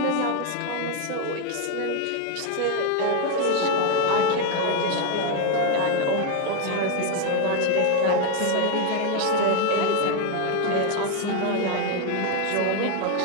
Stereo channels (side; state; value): both; different; correlation 0.01